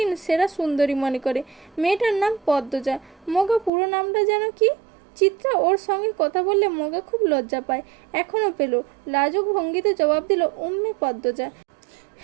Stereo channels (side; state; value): left; drops out; at 3.7 s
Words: সেরা সুন্দরী মনে করে। মেয়েটার নাম পদ্মজা। মগা পুরো নামটা যেন কি? চিত্রা ওর সঙ্গে কথা বললে মগা খুব লজ্জা পায়, এখনও পেল। লাজুক ভঙ্গিতে জবাব দিল, উম্মে পদ্মজা।